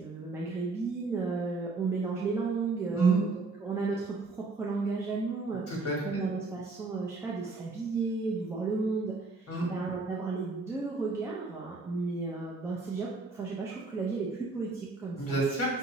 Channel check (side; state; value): left; quieter; 3.7 dB